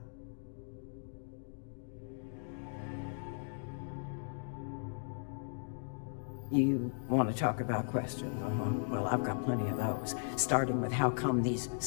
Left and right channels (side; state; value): right; silent; digital silence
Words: You want to talk about questions, Well, I've got plenty of those. Starting with how come these